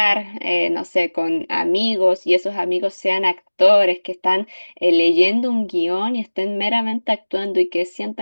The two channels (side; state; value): both; inverted; correlation -1.00